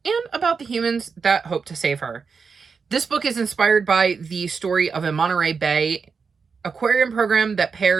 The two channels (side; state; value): left; quieter; 5.4 dB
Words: and about the humans that hope to save her. This book is inspired by the story of a Monterey Bay aquarium program that